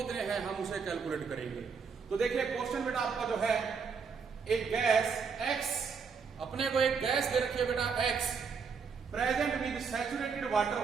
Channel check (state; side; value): quieter; left; 5.7 dB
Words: हैं हम उसे कैलकुलेट करेंगे। तो देखिए क्वेश्चन बेटा आपका जो है एक गैस X, अपने को एक गैस दे रखी है बेटा X present with saturated water